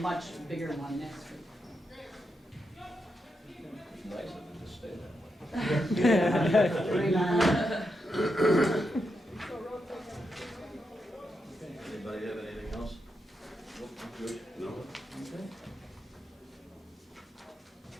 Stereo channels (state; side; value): normal; both; correlation 0.84